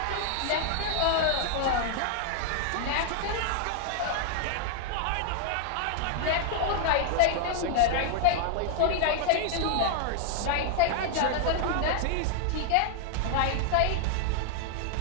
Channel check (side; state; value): both; different; correlation 0.00